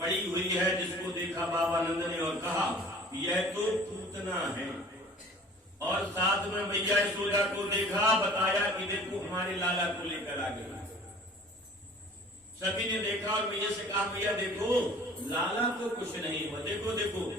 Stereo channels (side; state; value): both; normal; correlation 0.46